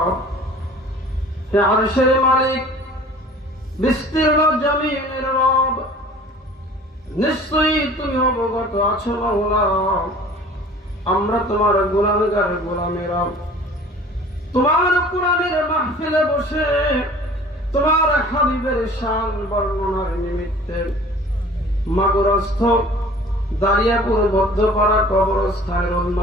يا عرش الملك বিস্তীর্ণ জমিনের রব নিশ্চয়ই তুমি অবগত আছো মাওলা আমরা তোমার গুনাহগার গোলামের রব তোমার কোরআনের মাহফিলে বসে তোমার হাবিবের শান বর্ণনার নিমিত্তে মাগুরস্থ দারিয়াপুর বদ্ধপাড়া কবরস্থানের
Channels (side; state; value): both; normal; correlation 0.46